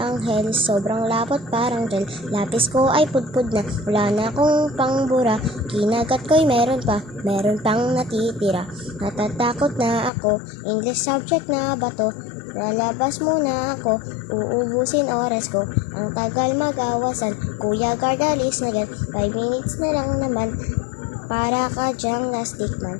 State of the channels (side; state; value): right; drops out; at 10.1 s